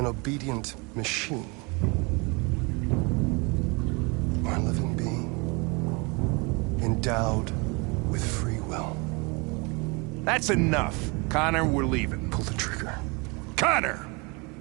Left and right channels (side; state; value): left; quieter; 29.3 dB